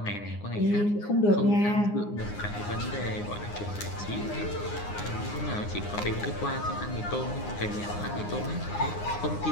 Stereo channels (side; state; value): right; late; 9.7 ms